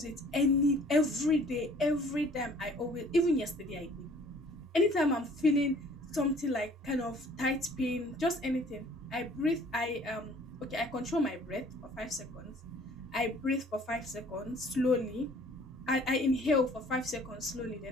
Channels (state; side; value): normal; both; correlation 0.54